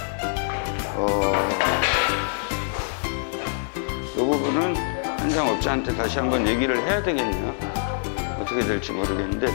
이 부분은 현장업자한테 다시 한번 얘기를 해야 되겠네요. 어떻게 될지 모르겠는데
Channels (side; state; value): right; silent; digital silence